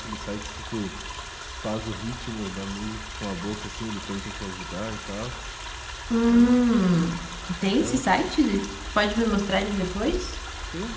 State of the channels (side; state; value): both; identical; correlation 1.00